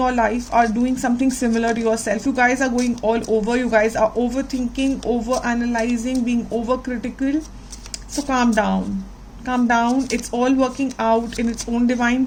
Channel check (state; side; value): identical; both; correlation 1.00